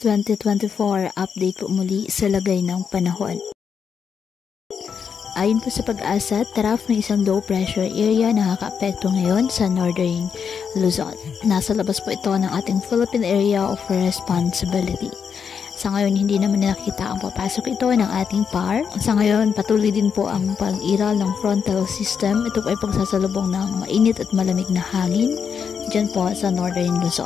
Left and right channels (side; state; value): right; quieter; 6.7 dB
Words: Update po muli sa lagay ng panahon. Ayon po sa Pag-asa, trough ng isang low pressure area na nakaka-apekto ngayon sa northern Luzon. Nasa labas po ito ng ating Philippine Area of Responsibility. Sa ngayon, hindi naman nakita ang papasok ito ng ating PAR. Sa ngayon, patuloy din po ang pag-iral ng frontal system. Ito po ay pagsasalubong ng mainit at malamig na hangin dyan po sa northern